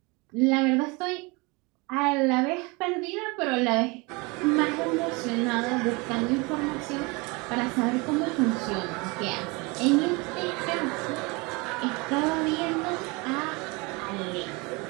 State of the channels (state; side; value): quieter; left; 27.1 dB